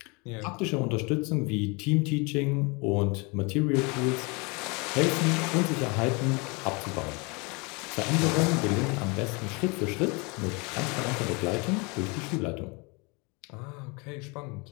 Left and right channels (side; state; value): right; quieter; 29.4 dB